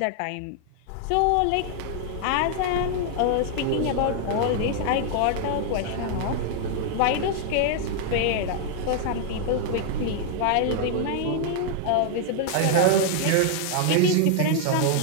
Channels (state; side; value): different; both; correlation 0.00